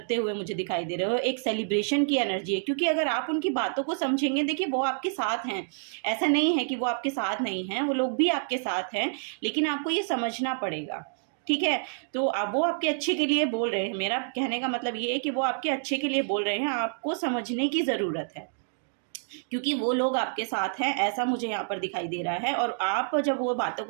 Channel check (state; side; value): silent; left; digital silence